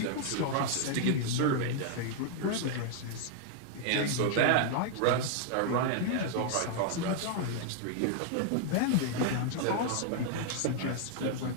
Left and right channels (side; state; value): both; different; correlation 0.00